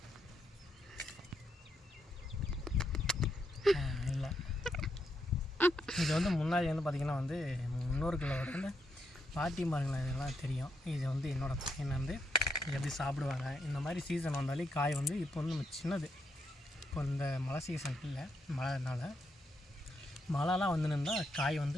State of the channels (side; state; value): both; normal; correlation 0.79